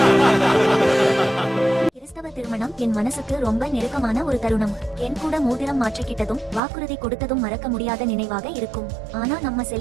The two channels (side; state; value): left; drops out; at 6.6 s